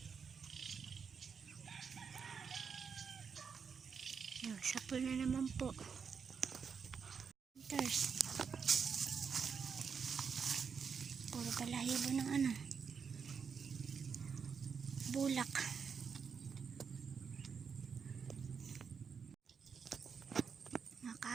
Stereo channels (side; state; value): left; quieter; 6.2 dB